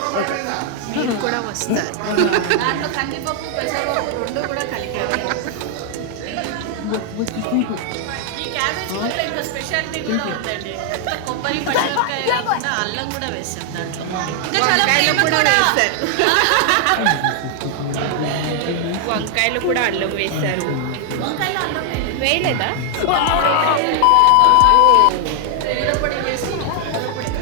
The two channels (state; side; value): different; both; correlation 0.00